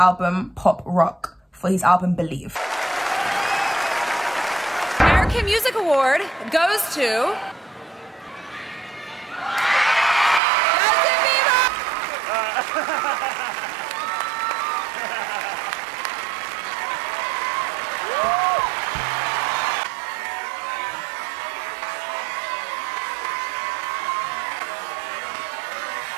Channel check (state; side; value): drops out; left; at 10.4 s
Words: Pop Rock for his album Believe. American Music Award goes to Justin Bieber.